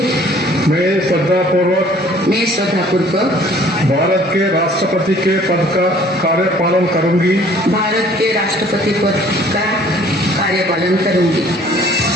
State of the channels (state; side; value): normal; both; correlation 0.55